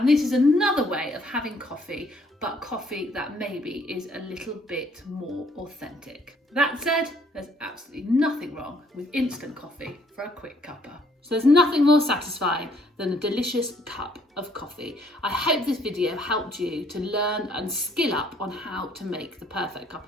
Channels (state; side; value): normal; both; correlation 0.65